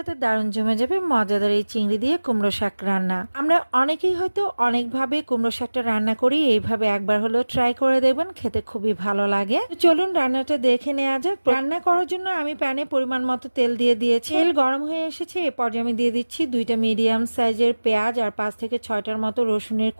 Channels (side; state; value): both; inverted; correlation -1.00